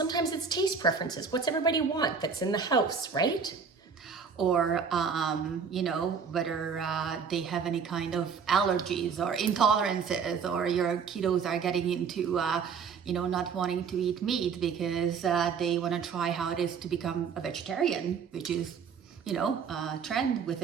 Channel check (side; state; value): left; quieter; 6.1 dB